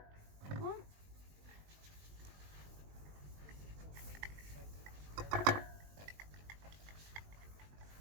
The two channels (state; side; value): late; left; 20 ms